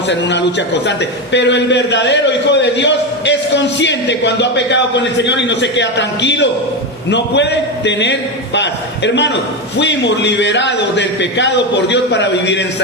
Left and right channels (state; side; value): normal; both; correlation 0.14